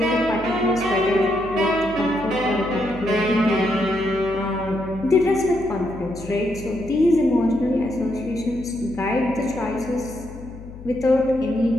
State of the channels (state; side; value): noise; left; hum, 15 dB below the sound